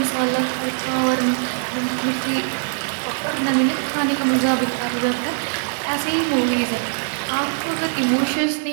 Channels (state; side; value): silent; left; digital silence